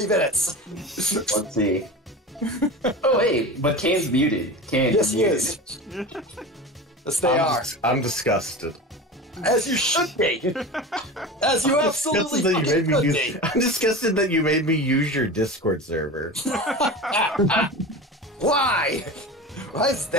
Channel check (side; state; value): both; normal; correlation 0.30